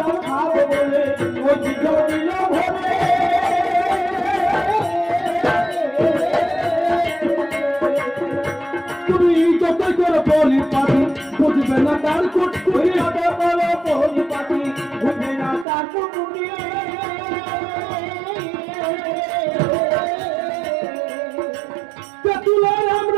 খাবো বলে ওর সিদ্ধ দিল ভরে। তুমি যতই করে বলি পাখি বুঝবে না তার কুটকুটি, বলি পাখি বুঝবে না তার কুটকুটি। তুলার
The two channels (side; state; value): left; drops out; at 15.7 s